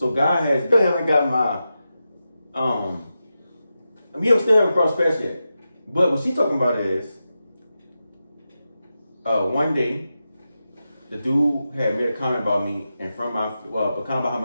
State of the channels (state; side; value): inverted; both; correlation -0.90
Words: God has, still haven't got we still haven't crossed paths yet. But what she's talking about is, one day, the dude had made a comment about me in front of a comment behind